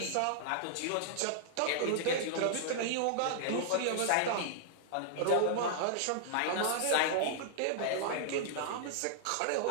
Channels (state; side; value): different; both; correlation -0.01